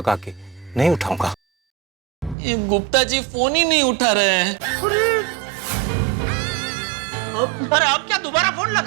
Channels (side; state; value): left; drops out; at 2.4 s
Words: के। नहीं उठाऊंगा। ये गुप्ता जी फोन ही नहीं उठा रहे हैं। अरे अब क्या दोबारा फोन